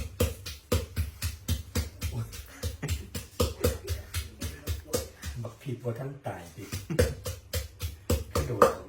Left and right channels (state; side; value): identical; both; correlation 1.00